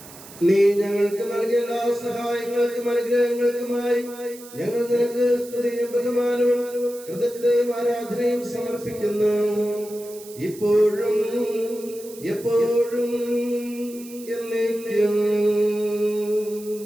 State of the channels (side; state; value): right; noise; hiss, 18 dB below the sound